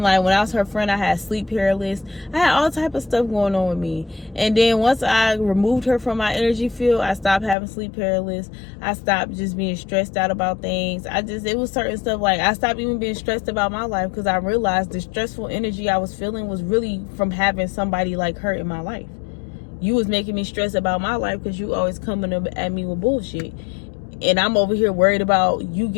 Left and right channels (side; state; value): right; drops out; at 7.6 s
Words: like, when I was her friend, I had sleep paralysis. I had all type of stuff going on with me. And then once I removed her from my energy field, I stopped having sleep paralysis. I stopped just being stressed out about things. It was certain stuff, like, I stopped even being stressed about my life, because I realized the stressful energy I was feeling was really from having somebody like her in my life. You was making me stress about my life because you always coming up at me with bullshit. And I'm over here worried about you